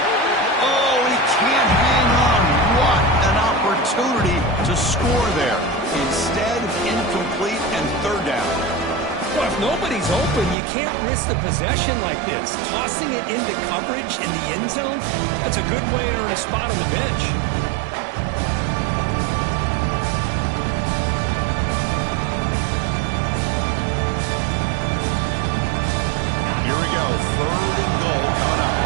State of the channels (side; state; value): left; drops out; at 10.6 s